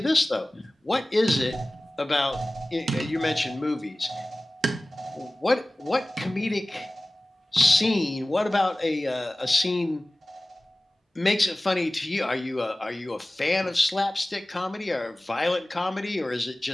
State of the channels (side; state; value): both; normal; correlation 0.98